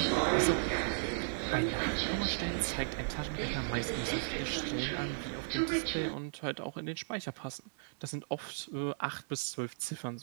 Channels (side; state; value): left; silent; digital silence